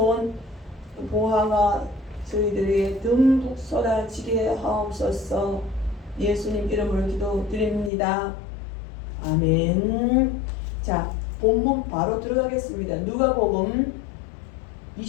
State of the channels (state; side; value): drops out; right; at 7.9 s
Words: 보화가 저희들에게 듬뿍 쏟아지게 하옵소서. 예수님 이름으로 기도드립니다. 아멘. 자, 본문 바로 들어가겠습니다. 누가복음